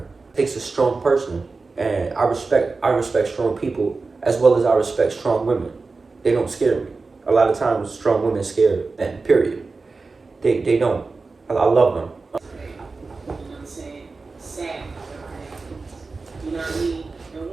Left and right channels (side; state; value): left; quieter; 4.0 dB